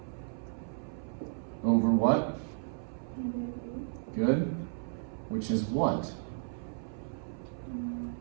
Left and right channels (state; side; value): silent; left; 55 dB below the other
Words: Over what? Good. Which is what?